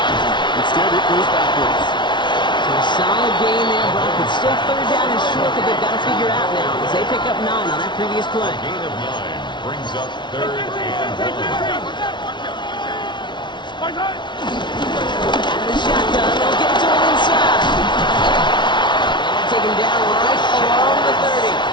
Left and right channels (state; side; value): late; right; 0.23 ms